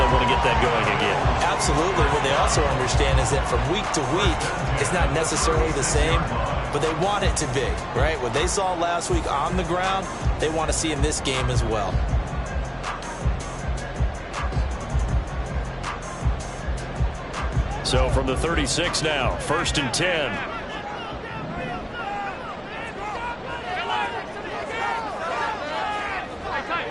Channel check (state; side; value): identical; both; correlation 1.00